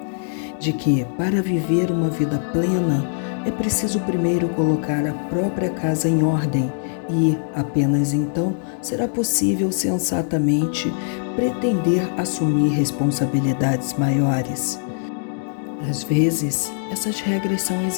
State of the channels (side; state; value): right; silent; digital silence